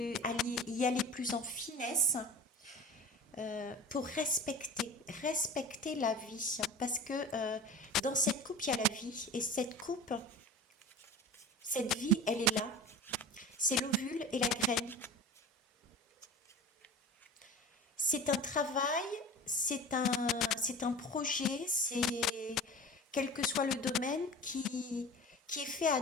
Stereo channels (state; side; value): normal; both; correlation 0.35